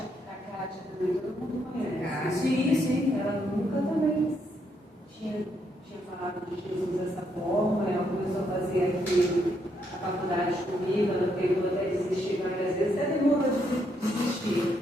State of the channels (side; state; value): both; normal; correlation 0.76